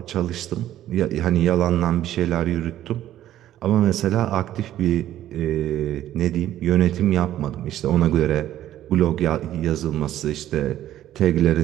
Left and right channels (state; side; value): quieter; left; 12.7 dB